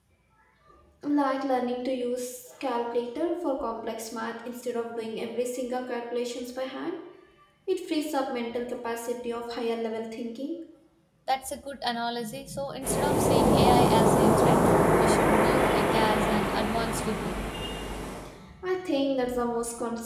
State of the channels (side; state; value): both; identical; correlation 1.00